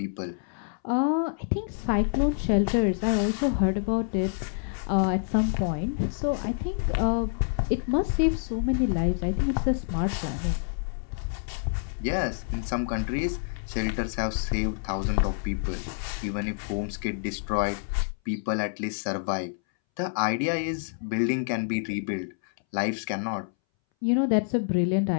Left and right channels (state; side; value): silent; right; 60 dB below the other